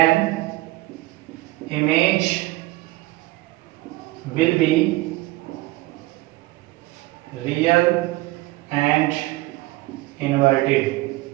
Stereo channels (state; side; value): quieter; left; 19.5 dB